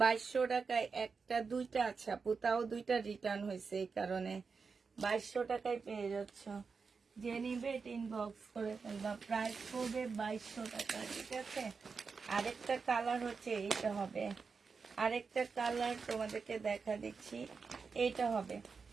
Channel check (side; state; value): left; quieter; 5.1 dB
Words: 2200 টাকায় একটা দুইটা, আচ্ছা পুতাও দুইটা রিটার্ন হয়েছে, এই কারণে 2200 টাকায় পেয়ে যাচ্ছ। যে নিবে এটা ইনবক্স করে ফেলবা। প্রাইস পড়বে 2200 টাকা। ঠিক আছে, আরেকটা কালার হচ্ছে এইটা হবে, আরেকটা কালার তোমাদেরকে দেখা দিচ্ছি, এইটা হবে।